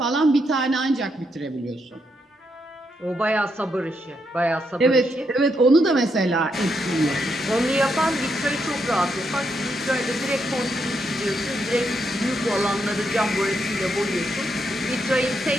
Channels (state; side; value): normal; both; correlation 0.79